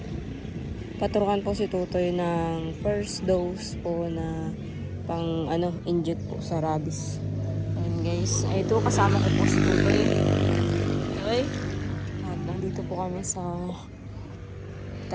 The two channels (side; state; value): both; identical; correlation 1.00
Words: po si Tutoy ng first dose po na pang inject po sa rabies. Ayan guys, ay ito kasama ko po si Tutoy. Okay? At nandito po kami sa